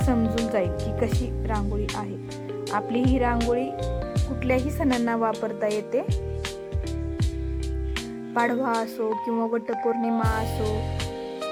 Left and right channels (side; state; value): both; identical; correlation 1.00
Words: जाईल की कशी रांगोळी आहे. आपली ही रांगोळी कुठल्याही सणांना वापरता येते. पाडवा असो किंवा वटपौर्णिमा असो,